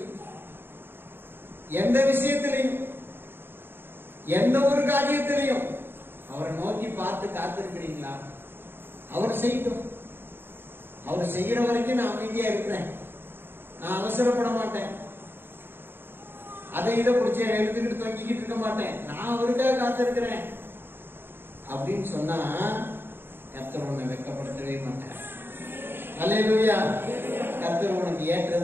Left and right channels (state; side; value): late; left; 0.10 ms